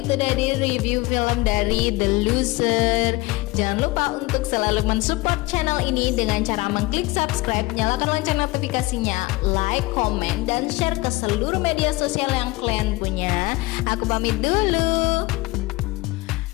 sudah di review film dari The Loser. Jangan lupa untuk selalu mensupport channel ini dengan cara mengklik subscribe, nyalakan lonceng notifikasinya, like, komen, dan share ke seluruh media sosial yang kalian punya. Aku pamit dulu.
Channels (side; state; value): right; quieter; 21.8 dB